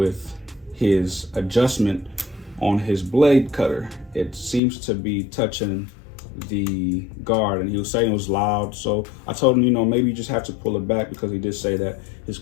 his adjustment on his blade cutter. It seems to be touching the guard, and he was saying it was loud. So I told him, you know, maybe you just have to pull it back, because he did say that his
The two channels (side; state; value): right; drops out; at 4.6 s